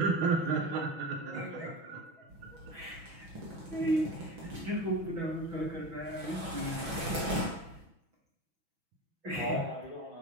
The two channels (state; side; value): late; left; 6.1 ms